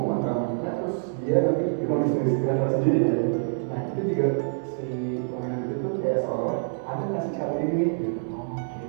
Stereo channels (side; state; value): left; silent; 58 dB below the other